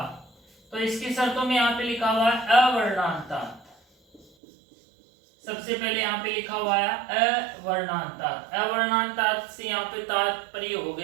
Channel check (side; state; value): left; drops out; at 4.2 s